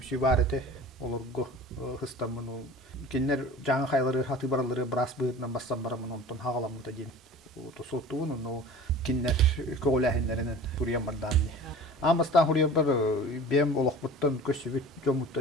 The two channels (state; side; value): normal; both; correlation 0.41